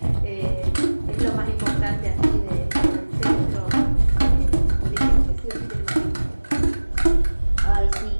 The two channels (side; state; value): both; inverted; correlation -1.00